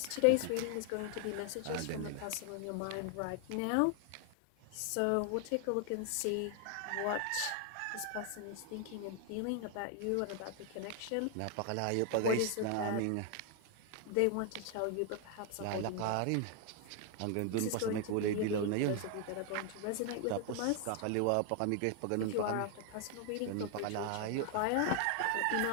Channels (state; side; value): different; both; correlation 0.00